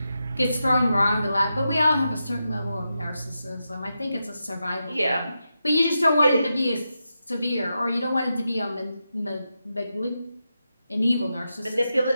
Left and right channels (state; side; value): inverted; both; correlation -0.88